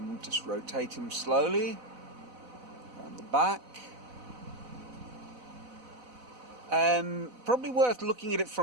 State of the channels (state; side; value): late; left; 4.0 ms